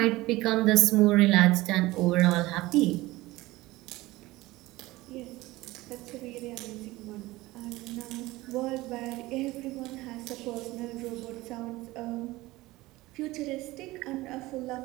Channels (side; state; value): left; quieter; 19.1 dB